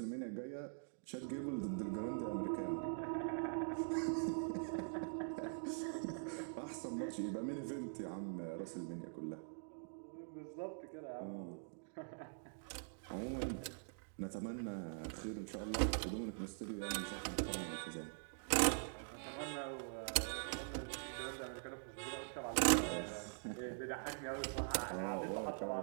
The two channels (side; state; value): left; silent; digital silence